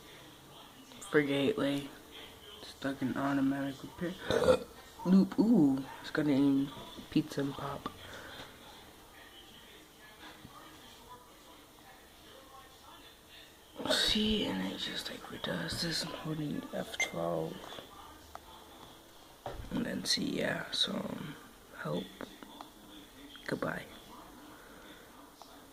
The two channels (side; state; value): both; identical; correlation 1.00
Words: For Gateway. Stuck in automatic repair. Loop, ooh. It's gonna eat pizza and pop. See, and it just like redoes this. I'm holding F12. And then see, yeah, so help. Goodbye.